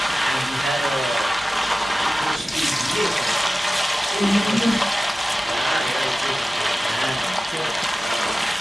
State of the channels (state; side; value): normal; both; correlation 0.96